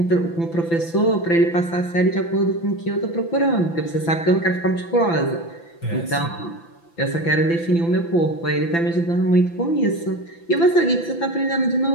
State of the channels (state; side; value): late; right; 5.9 ms